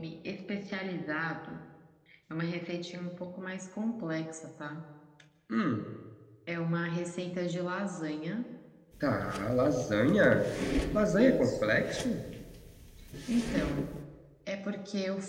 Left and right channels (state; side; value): identical; both; correlation 1.00